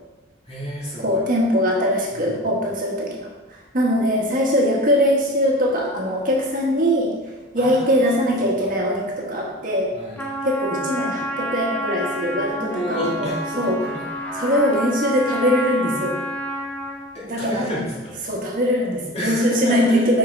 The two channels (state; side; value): normal; both; correlation 0.34